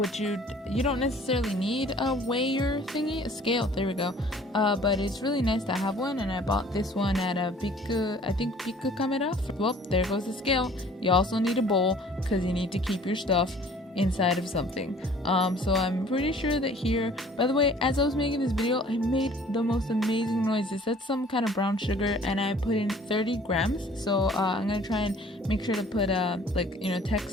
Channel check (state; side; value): normal; both; correlation 0.52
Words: you don't necessarily need a weigher thingy, a scale, there we go, but it's really nice to have one, and I bought this one at a Biku Camera. Well, there goes the scale. You also need a bowl, because you need to keep your stuff inside of something. So I'm pretty sure that here, by the way, as I was making this video, I made the most amazing noises. That's some kind of brown sugar, and I put in 30 grams. So I'm gonna try and make sure to put